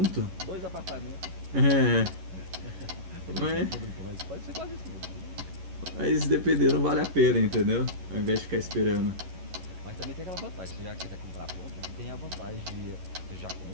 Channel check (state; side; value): late; left; 11 ms